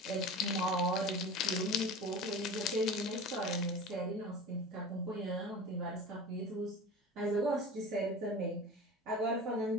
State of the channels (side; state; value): both; normal; correlation 0.34